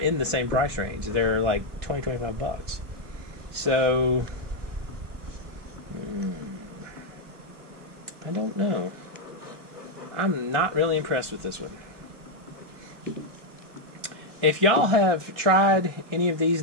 the same price range. They're like $20-25. So, I don't know. I'm not really impressed with this one. If y'all have tried any of these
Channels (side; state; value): left; late; 1.7 ms